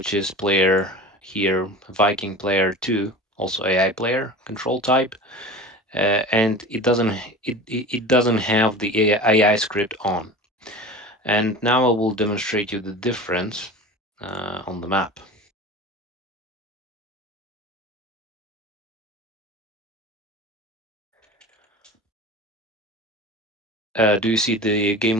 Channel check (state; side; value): normal; both; correlation 0.34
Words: is player here, Viking player two, also AI player, control type, and it doesn't have the AI script on. And now I will demonstrate you the difference on the map. Do you see the game